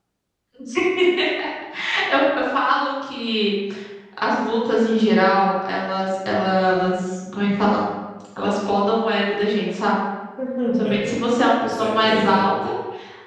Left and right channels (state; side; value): identical; both; correlation 1.00